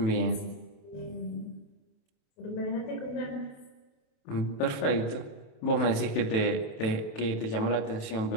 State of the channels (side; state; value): right; late; 27 ms